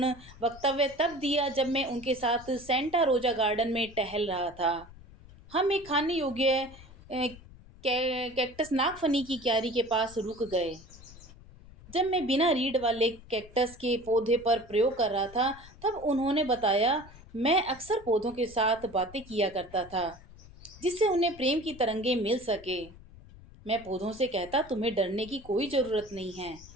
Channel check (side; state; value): left; noise; rumble, 20 dB below the sound